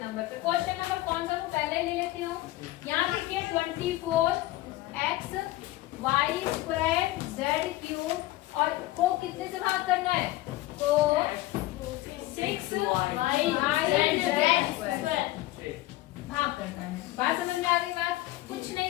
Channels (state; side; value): quieter; right; 17.1 dB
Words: नंबर पे। क्वेश्चन नंबर कौन सा, वो पहले ले लेती हूँ। यहाँ देखिए 24x y square z cube और को कितने से भाग करना है, को 6y z भाग करना है। बात समझ में आ गई? बात कुछ